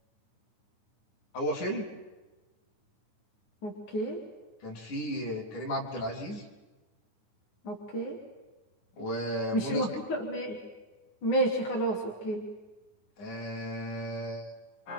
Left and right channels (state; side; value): late; right; 9.7 ms